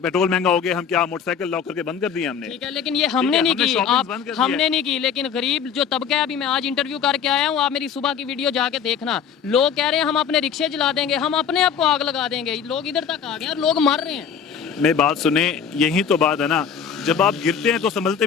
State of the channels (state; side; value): quieter; right; 7.4 dB